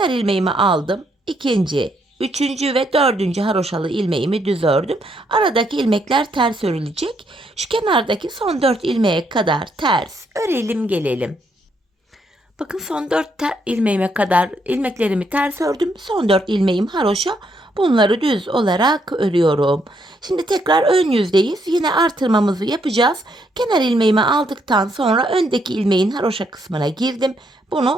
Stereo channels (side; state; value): both; normal; correlation 0.74